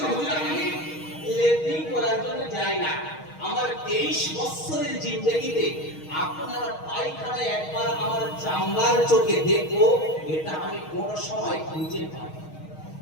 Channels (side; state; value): right; late; 6.4 ms